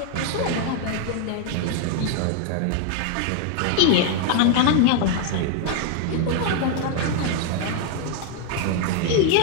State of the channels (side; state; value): both; different; correlation 0.00